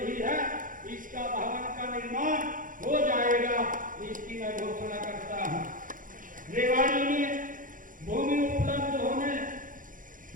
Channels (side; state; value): left; late; 0.39 ms